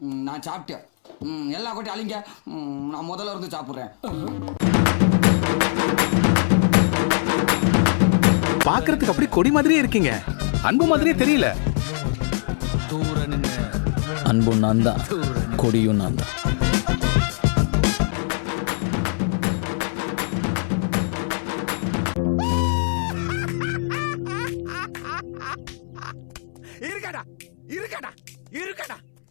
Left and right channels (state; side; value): silent; right; 63 dB below the other